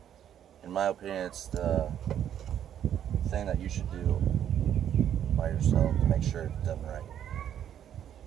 In my opinion, it's the thing that you should do by yourself to make sure it's done right.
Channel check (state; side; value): quieter; left; 9.9 dB